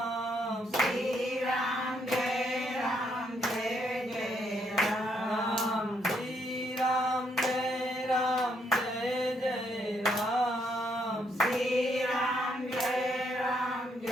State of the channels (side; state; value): both; normal; correlation 0.74